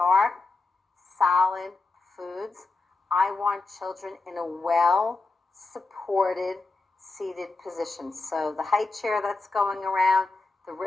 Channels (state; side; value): quieter; right; 3.6 dB